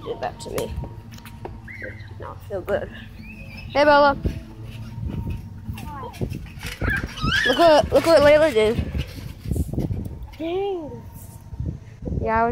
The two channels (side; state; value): both; identical; correlation 1.00